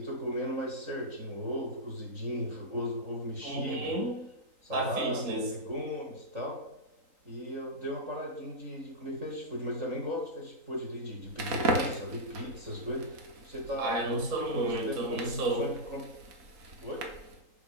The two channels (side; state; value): left; late; 3.8 ms